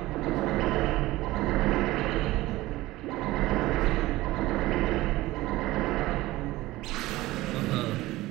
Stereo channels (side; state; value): left; quieter; 18.0 dB